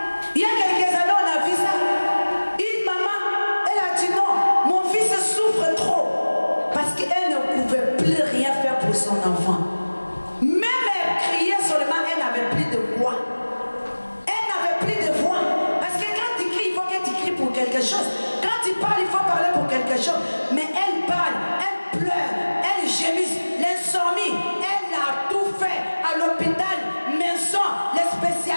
Il y a quelques années, on a vu ça. Une maman, elle a dit non, mon fils souffre trop. Parce qu'elle ne pouvait plus rien faire pour son enfant. Même elle criait seulement, elle n'avait plus de voix. Elle n'avait plus de voix. Parce que quand tu cries, il faut que tu cries pour quelque chose. Quand tu parles, il faut parler pour quelque chose. Mais elle parle, elle pleure, elle gémisse, l'insomnie. Elle a tout fait à l'hôpital, maison, les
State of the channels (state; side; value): inverted; both; correlation -1.00